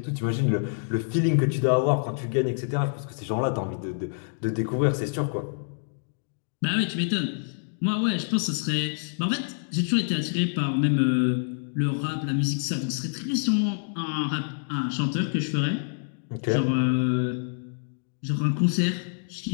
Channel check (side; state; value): right; silent; digital silence